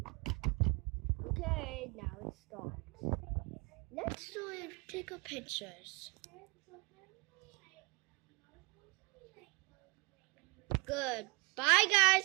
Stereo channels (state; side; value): quieter; left; 27.6 dB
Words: Okay, now it starts. Let's do it. Take a pictures. Good. Bye,